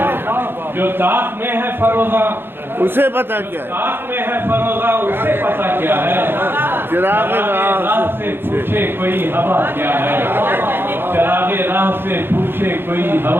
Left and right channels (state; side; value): late; left; 0.10 ms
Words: جو تاب میں ہے فروغہ اسے پتا کیا ہے تاب میں ہے فروغہ اسے پتا کیا ہے چراغ راہ سے پوچھے کوئی ہوا کیا ہے چراغ راہ سے پوچھے کوئی